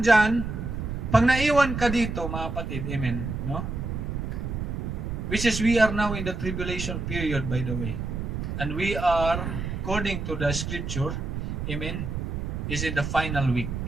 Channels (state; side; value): noise; right; rumble, 4 dB below the sound